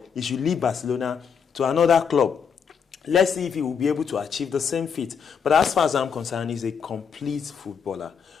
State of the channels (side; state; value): right; quieter; 6.8 dB